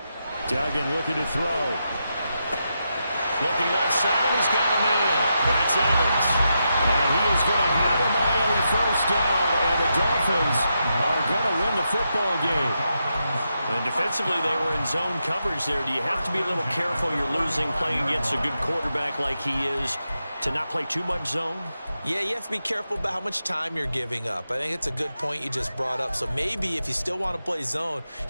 Duggan looking to throw. Looking left side, and he's got him in. That's Evans. And he is going to have a Miami first down, and the Dolphins are going to win the football game. And defensively, they were in zone coverage there. Do you have to be a little careful? You're losing playing against a good quarterback like he is to not play too much zone? Yeah, you have to be careful about how much time you're giving up. I think it's a good point you just brought up. So maybe if you still want to play zone,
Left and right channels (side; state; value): both; inverted; correlation -0.85